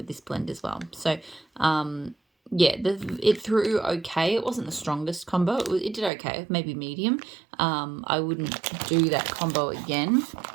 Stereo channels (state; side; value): drops out; left; at 6.1 s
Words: this blend as well. So yeah, it threw okay. It wasn't the strongest combo. It did okay, maybe medium. I wouldn't do that combo again.